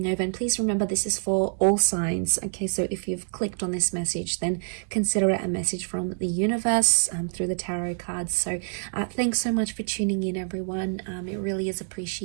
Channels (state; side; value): silent; left; digital silence